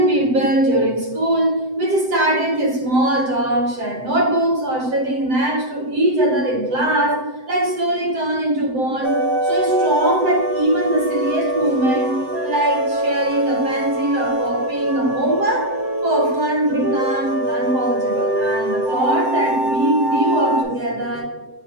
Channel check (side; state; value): left; late; 7.8 ms